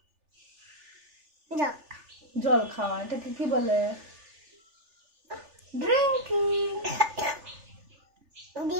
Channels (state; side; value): late; left; 3.4 ms